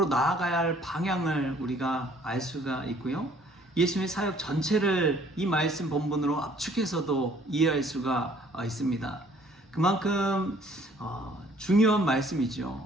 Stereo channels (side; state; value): both; normal; correlation 0.59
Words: 나아가야 할 방향을 우리가 알 수가 있고요. 예수님의 사역 전체를 이 말씀 본문으로 압축해서도 이해할 수가 있습니다. 그만큼 중요한